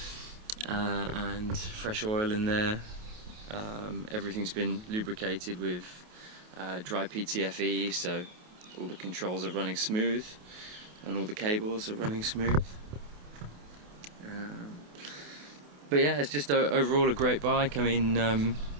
and fresh oil in there. Everything's been lubricated with dry PTFE, so all the controls are running smooth and all the cables are running smooth. But yeah, it's just overall a great bike. I mean,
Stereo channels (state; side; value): late; left; 28 ms